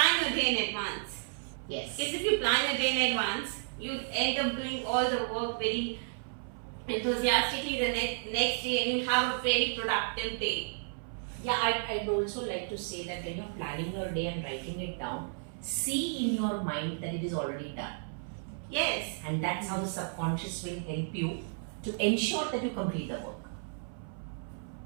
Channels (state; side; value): silent; left; 56 dB below the other